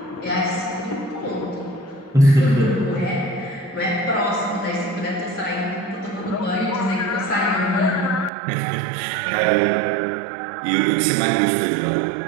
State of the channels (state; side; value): drops out; left; at 8.3 s